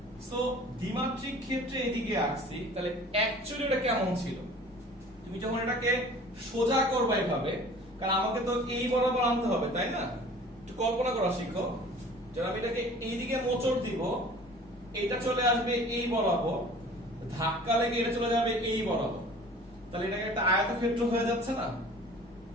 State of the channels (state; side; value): normal; both; correlation 0.46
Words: সো দ্বিমাত্রিক ক্ষেত্রে এইদিকে আঁকছি, তাহলে অ্যাকচুয়ালি এটা কেমন ছিল? তুমি যখন এটাকে সোজা করবে এইভাবে, কারণ আমাকে তো এই বরাবর আনতে হবে, তাই না? একটু কল্পনা করা শিখো। যখন আমি এটাকে এইদিকে মোচড় দিব, এটা চলে আসবে এই বরাবর, ধাক্কা লেগে এটা চলে যাবে এই বরাবর, তাহলে এটাকে একটা আয়তক্ষেত্র হয়ে যাচ্ছে না?